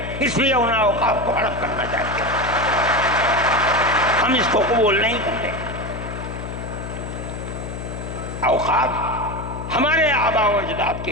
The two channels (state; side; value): noise; left; hum, 8 dB below the sound